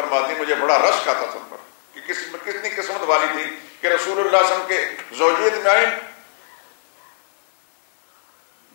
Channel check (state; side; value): silent; right; digital silence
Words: مجھے بڑا رشک آتا تھا ان پر کہ کتنی قسمت والی تھی کہ رسول اللہ صلی اللہ علیہ وسلم کے زوجیت میں آئیں،